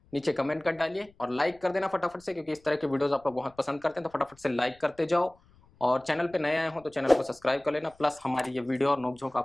नीचे कमेंट कर डालिए, और लाइक कर देना फटाफट से, क्योंकि इस तरह के वीडियोस आप लोग बहुत पसंद करते हैं, तो फटाफट से लाइक करते जाओ। और चैनल पे नए आए हो तो चैनल को सब्सक्राइब कर लेना। प्लस हमारी ये वीडियो और नोकझोंक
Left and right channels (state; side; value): noise; left; rumble, 30 dB below the sound